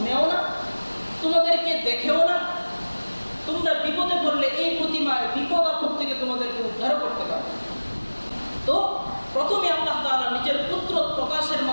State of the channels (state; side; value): inverted; both; correlation -1.00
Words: না, তোমাদেরকে দেখেও না। তোমরা বিপদে পড়লে এই প্রতিমায় বিপদ আপদ থেকে তোমাদেরকে উদ্ধার করতে পারবে। তো প্রথমে আল্লাহ তাআলা নিজের পুত্র প্রকাশের